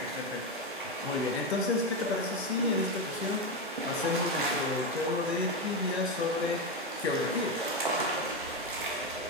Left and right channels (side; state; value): both; normal; correlation 0.11